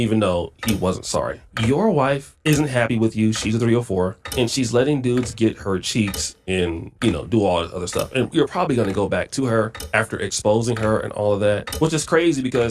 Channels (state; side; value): identical; both; correlation 1.00